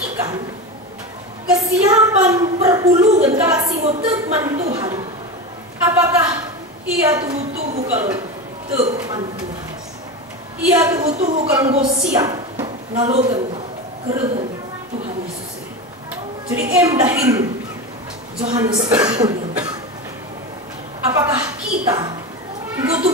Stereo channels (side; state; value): both; normal; correlation 0.22